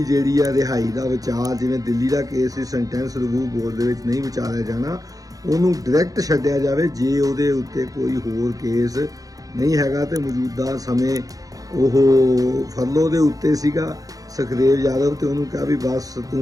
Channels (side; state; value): left; late; 0.17 ms